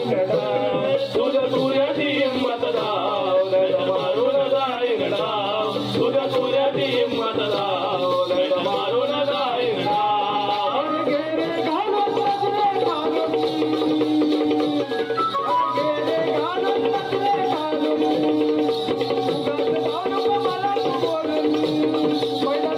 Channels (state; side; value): identical; both; correlation 1.00